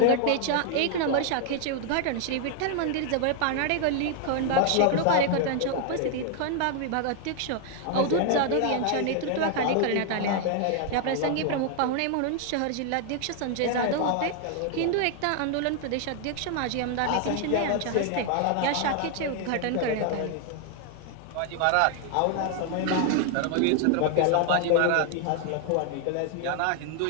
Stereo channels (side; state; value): both; different; correlation 0.00